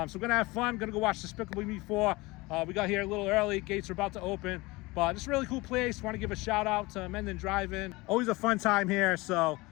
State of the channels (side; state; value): right; quieter; 22.6 dB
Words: we're gonna have fun, gonna go watch Despicable Me 4. We got here a little early, gates are about to open. But it's a really cool place. Want to give a shout out to Mendon Drive. Always a fun time here. So,